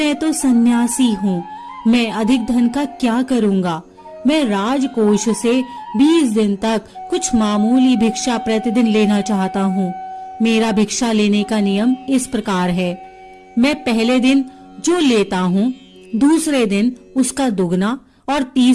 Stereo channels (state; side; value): identical; both; correlation 1.00